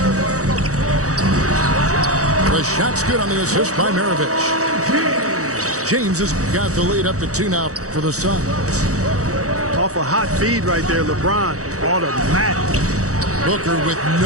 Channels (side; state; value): left; late; 0.65 ms